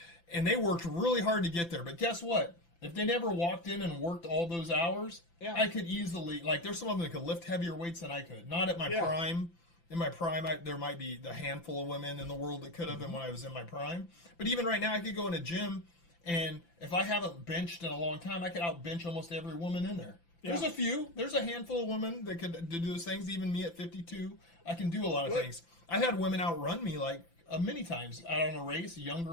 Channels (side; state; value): right; late; 5.9 ms